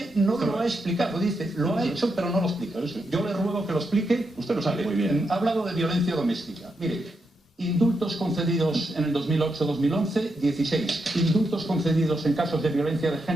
no lo ha explicado, dice, lo ha hecho pero no lo explica. Yo le ruego que lo explique. Usted lo sabe muy bien. Ha hablado de violencia doméstica. Mire, indultos concedidos en el 2008-2011, 16. Indultos concedidos en casos de violencia de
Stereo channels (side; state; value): both; normal; correlation 0.83